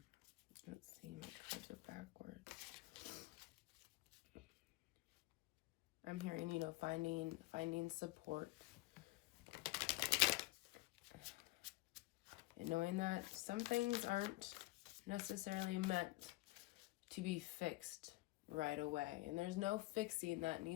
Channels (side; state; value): right; quieter; 20.1 dB